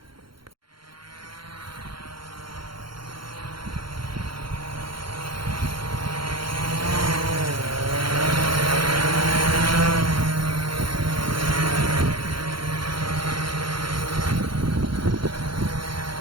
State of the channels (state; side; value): late; left; 0.73 ms